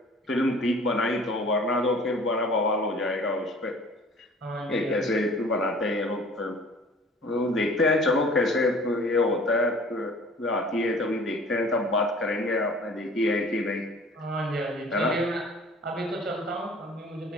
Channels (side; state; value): both; normal; correlation 0.49